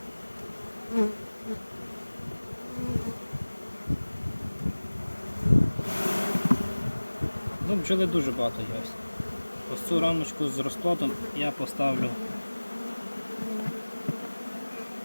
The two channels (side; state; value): both; inverted; correlation -1.00